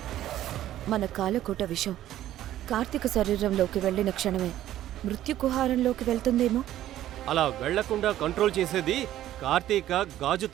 మన కాలకోట విషం కార్తీక శరీరంలోకి వెళ్ళిన క్షణమే మృత్యుకుహారంలోకి వెళ్తుందేమో. అలా వెళ్లకుండా కంట్రోల్ చేసేది కార్తీక గాజు.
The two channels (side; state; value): left; quieter; 13.0 dB